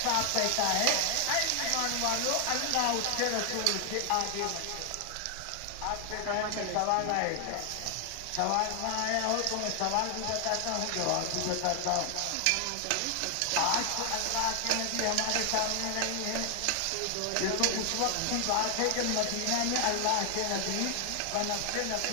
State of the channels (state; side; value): different; both; correlation 0.00